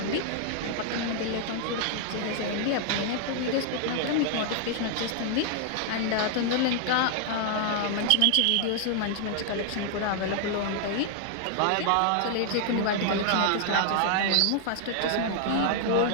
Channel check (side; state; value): both; different; correlation 0.00